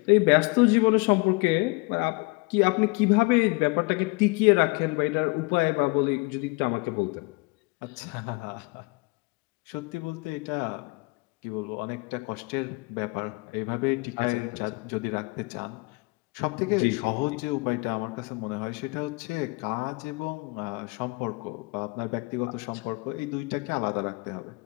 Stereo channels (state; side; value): quieter; right; 27.5 dB